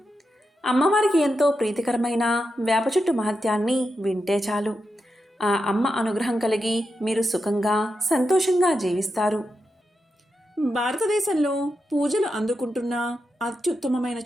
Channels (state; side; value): normal; both; correlation 0.87